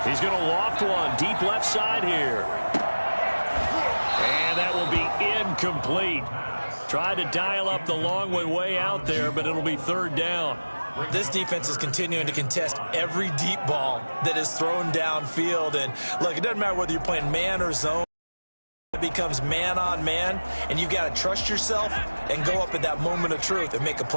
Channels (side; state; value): both; inverted; correlation -1.00